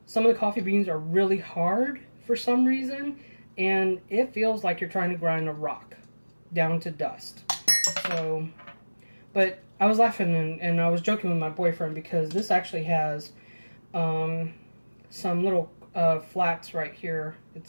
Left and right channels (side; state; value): both; inverted; correlation -1.00